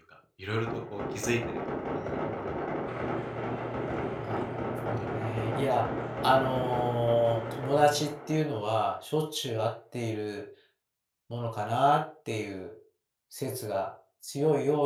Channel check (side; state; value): both; identical; correlation 1.00